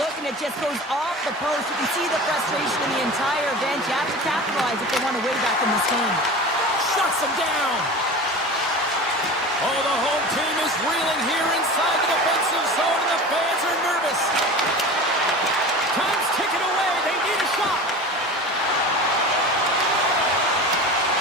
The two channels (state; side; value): normal; both; correlation 0.34